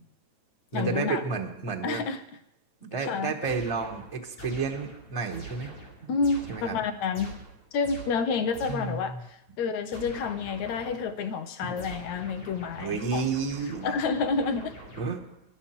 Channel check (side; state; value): right; late; 9.1 ms